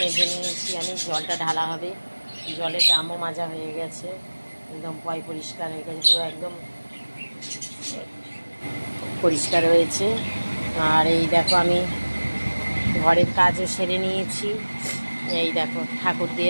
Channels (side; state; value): both; inverted; correlation -1.00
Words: মেজে নিয়েছি আমি, জলটা ঢালা হবে। জলের ড্রামও মাজা হয়ে গেছে, একদম পরিষ্কার হয়ে গেছে, পুরো একদম পরিষ্কার হয়েছে। আর এই দেখো আমি ঘরের কাজও সেরে নিয়েছি। এই দেখো ঠাকুর